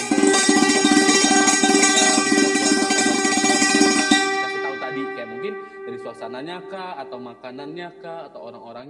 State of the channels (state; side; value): identical; both; correlation 1.00